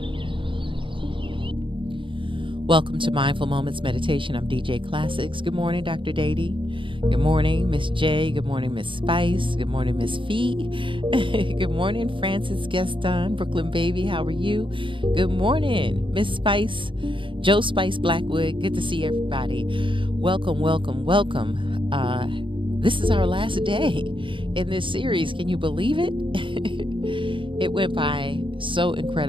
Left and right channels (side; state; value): left; late; 0.25 ms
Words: Welcome to Mindful Moments Meditation. I'm DJ Classics. Good morning, Dr. Dady. Good morning, Miss J. Good morning, Miss Spice. Good morning, Miss Fee. Good morning, Francis Gaston, Brooklyn Baby. How are you? Good morning, Miss Spice, Joe Spice Blackwood. Good to see everybody. Welcome, welcome, welcome. This is our last day in this series. Can you believe it? It went by so